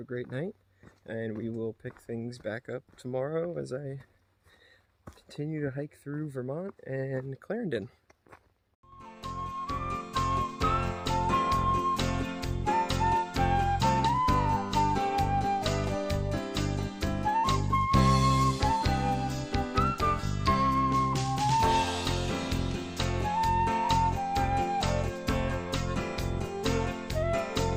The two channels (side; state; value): both; identical; correlation 1.00